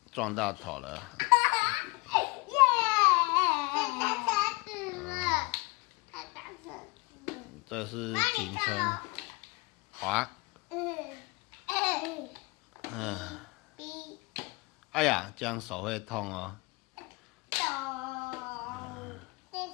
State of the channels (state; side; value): quieter; right; 25.3 dB